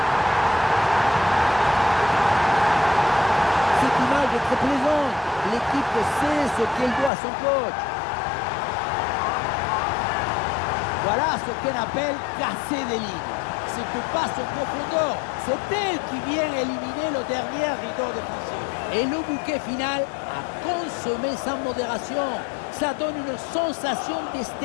Cette image est très plaisante. L'équipe sait ce qu'elle doit à son coach. Voilà ce qu'on appelle casser des lignes. Cette passe en profondeur, c'est elle qui vient éliminer le dernier rideau défensif. Et le bouquet final à consommer sans modération. Ça donne une sensation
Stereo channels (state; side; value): drops out; right; at 7.1 s